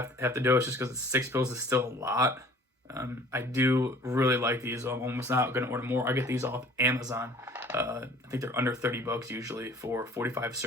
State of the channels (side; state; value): both; normal; correlation 0.51